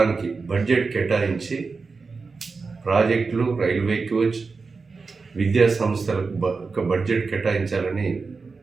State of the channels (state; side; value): quieter; left; 4.5 dB